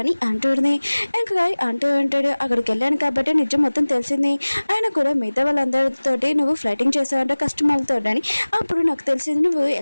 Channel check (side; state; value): both; inverted; correlation -1.00